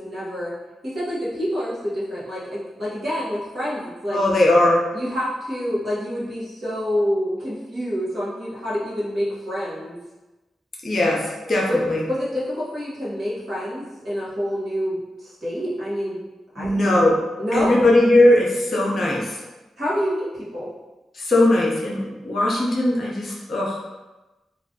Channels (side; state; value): both; normal; correlation 0.89